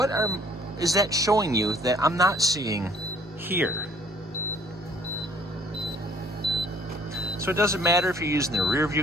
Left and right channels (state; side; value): normal; both; correlation 0.59